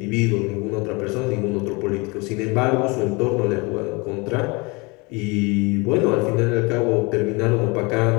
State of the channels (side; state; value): right; quieter; 27.3 dB